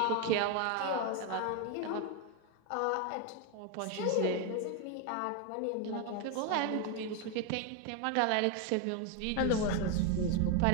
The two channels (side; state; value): both; different; correlation 0.02